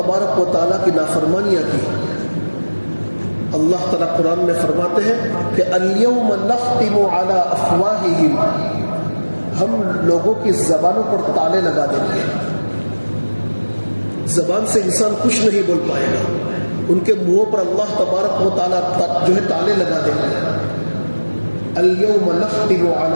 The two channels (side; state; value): both; inverted; correlation -1.00